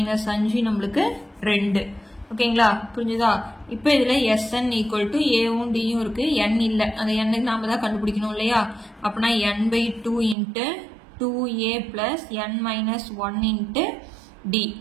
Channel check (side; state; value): left; drops out; at 10.4 s